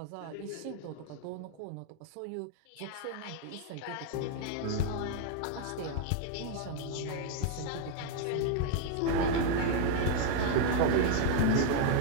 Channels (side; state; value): both; different; correlation 0.00